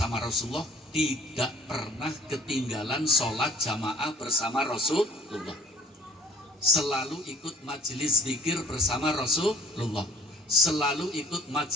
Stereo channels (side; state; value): both; normal; correlation 0.53